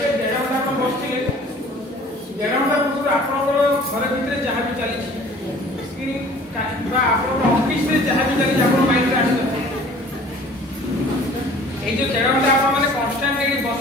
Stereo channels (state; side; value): normal; both; correlation 0.49